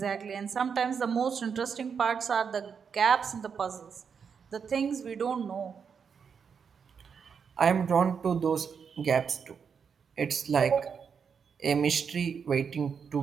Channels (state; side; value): quieter; left; 6.5 dB